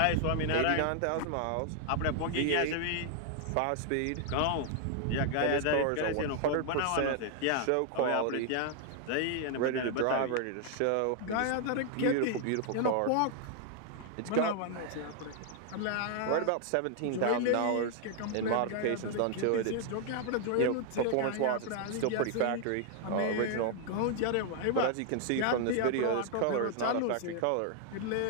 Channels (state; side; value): different; both; correlation 0.00